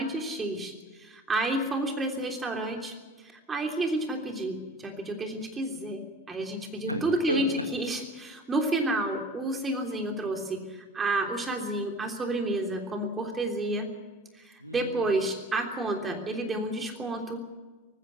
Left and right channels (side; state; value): both; normal; correlation 0.43